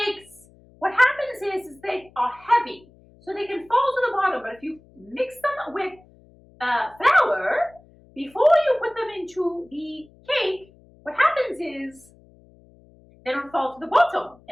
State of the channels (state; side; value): noise; left; hum, 27 dB below the sound